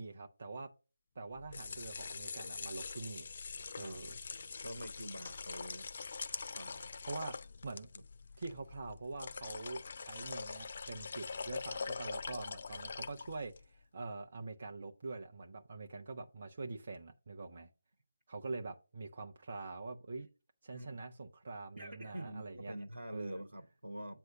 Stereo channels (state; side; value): inverted; both; correlation -0.88